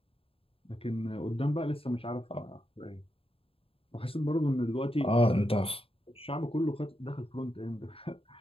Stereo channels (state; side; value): late; right; 0.27 ms